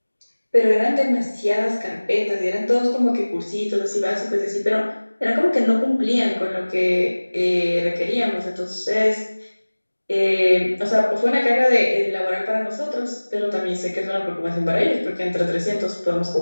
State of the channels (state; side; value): inverted; both; correlation -1.00